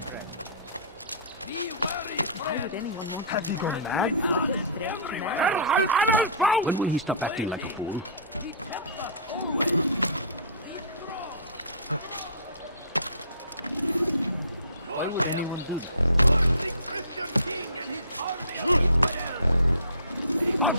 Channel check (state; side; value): inverted; both; correlation -0.40